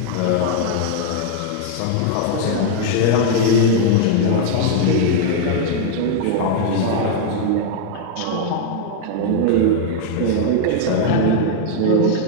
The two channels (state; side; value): different; both; correlation 0.00